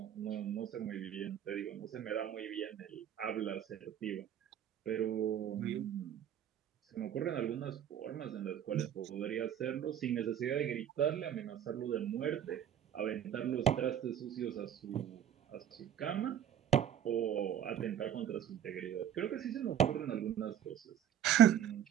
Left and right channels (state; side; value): quieter; left; 10.2 dB